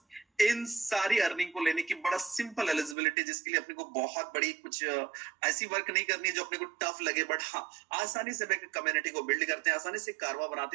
इन सारी अर्निंग को लेने की बड़ा सिंपल एलिजिबिलिटी, जिसके लिए अपने को बहुत बड़ी कुछ ऐसी वर्क नहीं करनी है जो अपने को टफ लगे, बट हाँ आसानी से कम्युनिटी को बिल्ड करते हैं, आसानी से कारवा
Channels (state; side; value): drops out; left; at 3.0 s